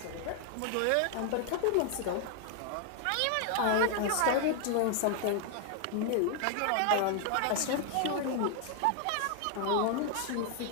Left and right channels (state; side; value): different; both; correlation 0.00